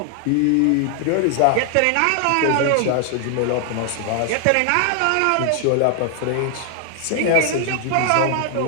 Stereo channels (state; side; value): different; both; correlation 0.00